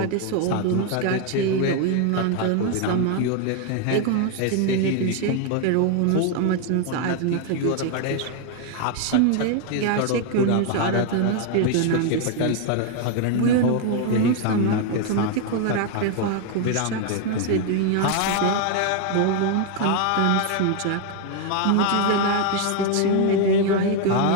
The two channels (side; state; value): both; different; correlation 0.01